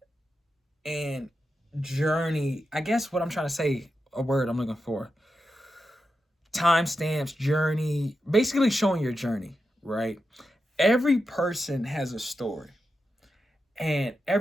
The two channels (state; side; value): normal; both; correlation 0.89